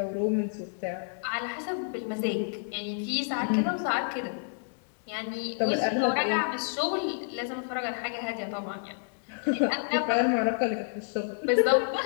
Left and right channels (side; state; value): right; silent; digital silence